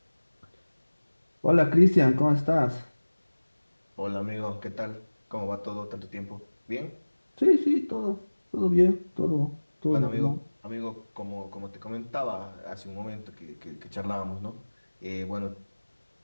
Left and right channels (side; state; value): both; inverted; correlation -1.00